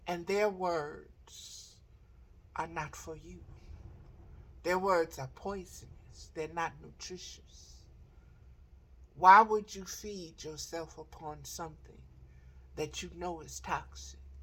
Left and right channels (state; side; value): identical; both; correlation 1.00